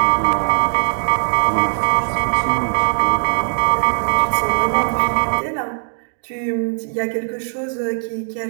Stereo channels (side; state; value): left; silent; digital silence